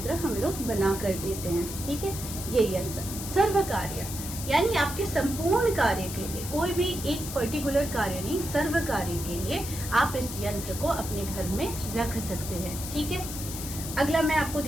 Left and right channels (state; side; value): noise; left; hiss, 8 dB below the sound